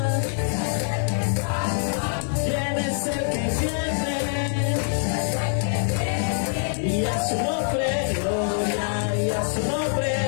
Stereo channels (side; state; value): right; silent; 62 dB below the other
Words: ¿Quién es el que viene? Y a su nombre, gloria, y a su nombre,